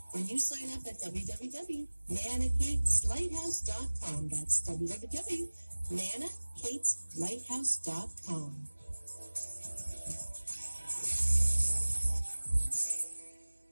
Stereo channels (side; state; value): both; inverted; correlation -1.00